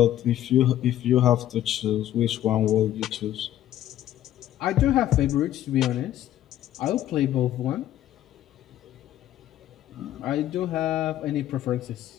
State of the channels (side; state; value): right; quieter; 12.6 dB